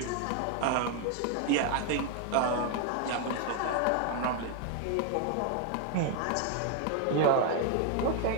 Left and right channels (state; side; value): different; both; correlation 0.00